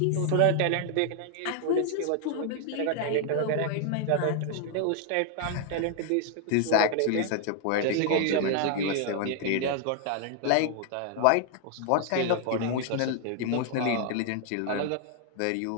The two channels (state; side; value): different; both; correlation 0.00